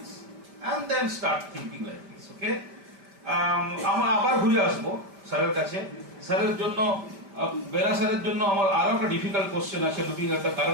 and then start thinking like this. Okay, আমরা আবার ঘুরে আসবো স্যারের কাছে। স্যারের জন্য বেরা স্যারের জন্য আমার আরো একটা ডিফিকাল্ট কোশ্চেন আছে, looking at the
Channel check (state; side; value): late; left; 5.1 ms